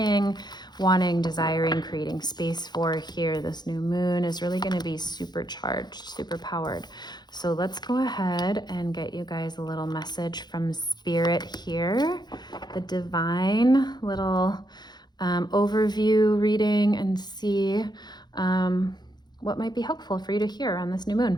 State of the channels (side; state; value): right; late; 0.21 ms